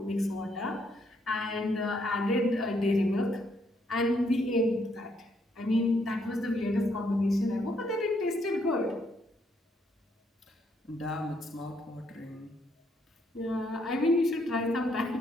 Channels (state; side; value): normal; both; correlation 0.73